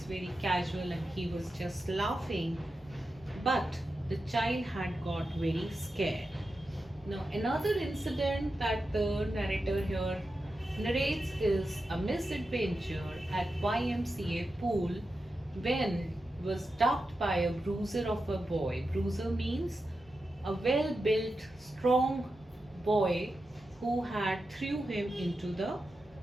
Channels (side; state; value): both; normal; correlation 0.90